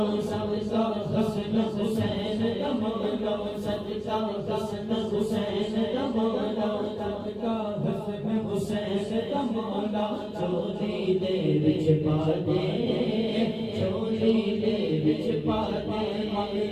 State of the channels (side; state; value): both; identical; correlation 1.00